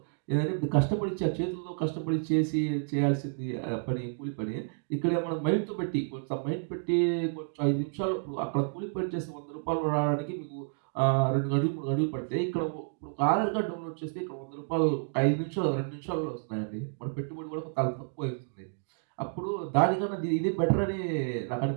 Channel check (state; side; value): silent; left; digital silence